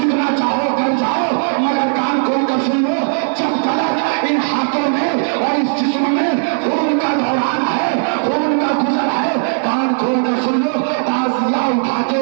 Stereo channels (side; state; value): left; silent; digital silence